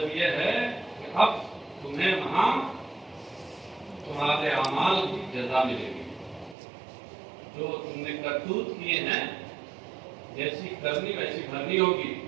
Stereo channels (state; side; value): drops out; left; at 6.6 s